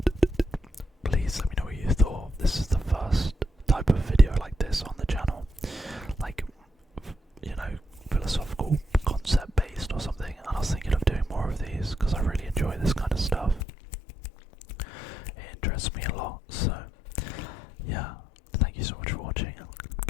Please let me know what you thought. This is the first type of video like this on the channel. Like, philosophical concept based or something. And I was thinking of doing more of these because I really enjoy this kind of stuff. It interests me a lot. So, yeah, thank you so much for watching.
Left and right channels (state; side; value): drops out; right; at 13.6 s